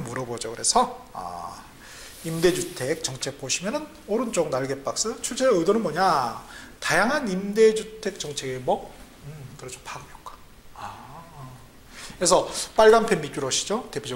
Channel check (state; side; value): identical; both; correlation 1.00